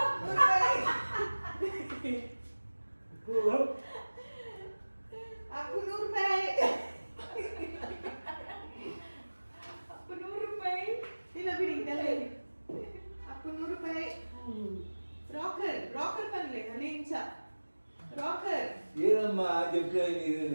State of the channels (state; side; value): inverted; both; correlation -1.00